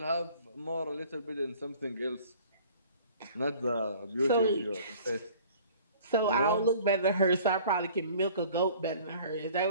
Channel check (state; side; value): inverted; both; correlation -0.50